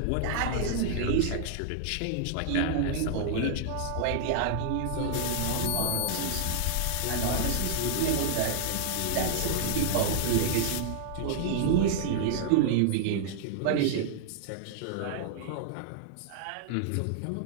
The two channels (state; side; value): different; both; correlation -0.01